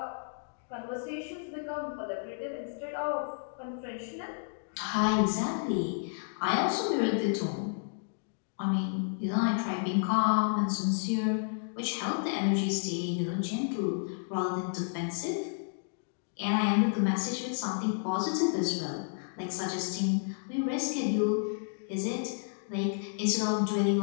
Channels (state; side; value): silent; right; digital silence